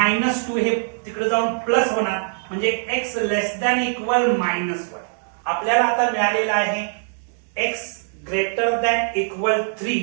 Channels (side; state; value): left; silent; digital silence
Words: हे तिकडे जाऊन प्लस होणार म्हणजे x लेस दॅन इक्वल -1. आपल्याला आता मिळालेला आहे x greater than equal